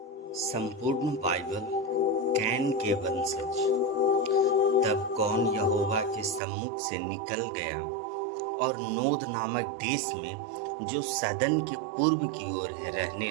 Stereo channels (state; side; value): drops out; left; at 6.4 s